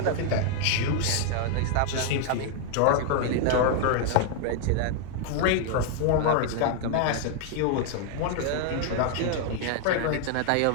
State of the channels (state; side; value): different; both; correlation 0.00